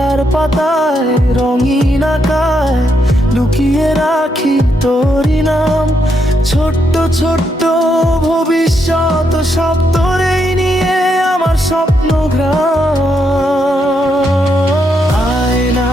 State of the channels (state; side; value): normal; both; correlation 0.79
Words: পাতায় রঙিন আঁকায় লুকিয়ে রাখি তোরই নাম, ছোট্ট ছোট্ট ভবিষ্যৎ সব তোরেই নিয়ে আমার স্বপ্ন গ্রাম। আয় না